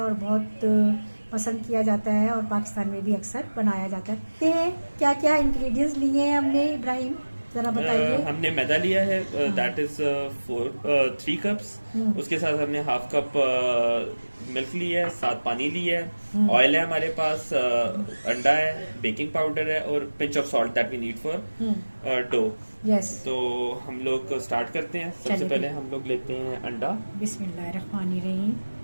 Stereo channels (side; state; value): both; inverted; correlation -1.00